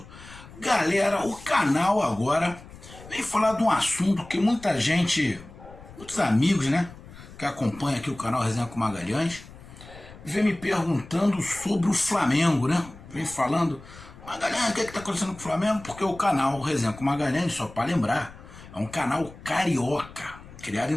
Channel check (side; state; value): left; noise; rumble, 18 dB below the sound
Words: Galera, o canal agora vem falar de um assunto que muita gente, muitos amigos, né, que acompanham aqui o canal Resenha com Magalhães, vem me perguntando sobre o Flamengo, né? Vem falando, Magalhães, o que está acontecendo com o Flamengo? Porque o canal Resenha com Magalhães, só para lembrar, é um canal carioca, criado